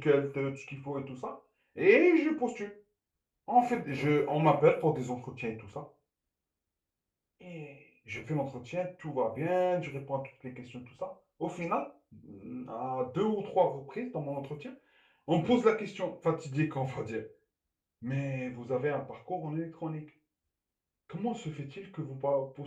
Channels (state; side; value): identical; both; correlation 1.00